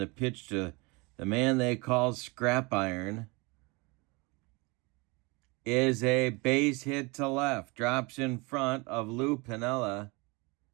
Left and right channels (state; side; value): quieter; left; 27.3 dB